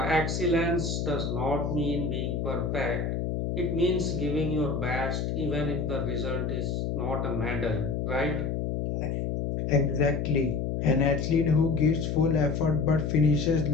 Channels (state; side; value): noise; left; hum, 1 dB below the sound